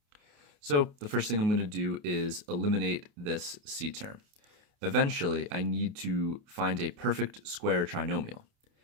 So the first thing I'm going to do is eliminate this c term. Eventually, I need to find a perfect square trinomial.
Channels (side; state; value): left; late; 28 ms